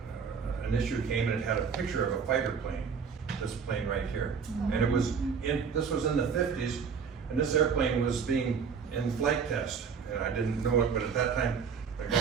an issue came and it had a picture of a fighter plane, this plane right here, and this was in the 50s, and this airplane was being in flight test, and I didn't know it, but at that time a guy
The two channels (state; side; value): quieter; left; 6.2 dB